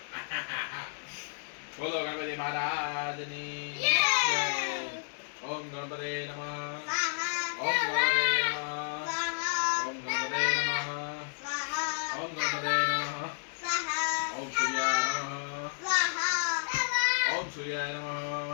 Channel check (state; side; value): silent; right; digital silence